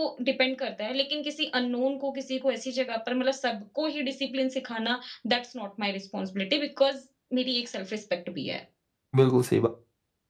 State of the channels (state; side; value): identical; both; correlation 1.00